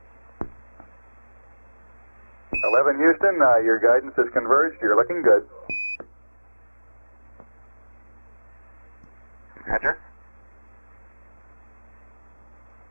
Houston, your guidance is converged. You're looking good. Roger.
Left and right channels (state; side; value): inverted; both; correlation -1.00